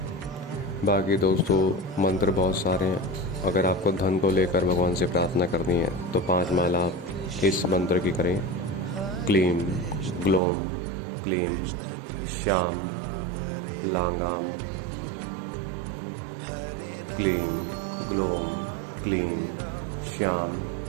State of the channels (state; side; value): drops out; left; at 10.4 s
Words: बाकी दोस्तों मंत्र बहुत सारे हैं। अगर आपको धन को लेकर भगवान से प्रार्थना करनी है तो 5 माला आप इस मंत्र की करें। क्लीम ग्लोम क्लीम श्याम लांगाम, क्लीम ग्लोम क्लीम श्याम